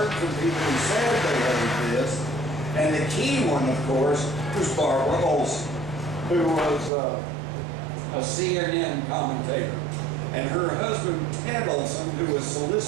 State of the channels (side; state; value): left; drops out; at 6.9 s